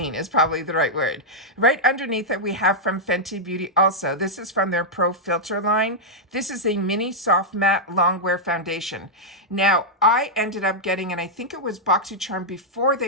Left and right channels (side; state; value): both; normal; correlation -0.05